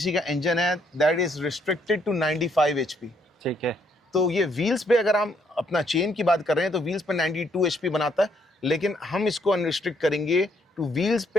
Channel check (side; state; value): both; normal; correlation 0.70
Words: का इंजन है, that is restricted to 95 HP। ठीक है। तो ये व्हील्स पे अगर हम अपना चेन की बात कर रहे हैं तो व्हील्स पे 92 HP बनाता है, लेकिन हम इसको अनरिस्ट्रिक्ट करेंगे टू व्हील्स